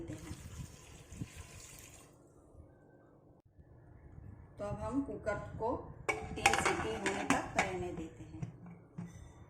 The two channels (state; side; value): identical; both; correlation 1.00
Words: हैं। तो अब हम कुकर को 3 सीटी होने तक रहने देते हैं।